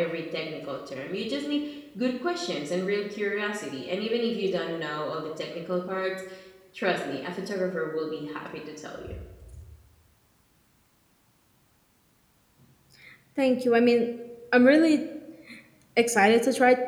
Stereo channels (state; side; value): identical; both; correlation 1.00